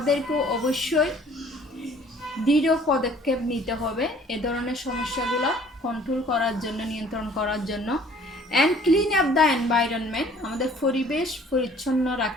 অবশ্যই দৃঢ় পদক্ষেপ নিতে হবে এ ধরনের সমস্যাগুলো কন্ট্রোল করার জন্য, নিয়ন্ত্রণ করার জন্য। And clean up the environment, আমাদের পরিবেশ পরিচ্ছন্ন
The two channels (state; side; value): normal; both; correlation 0.54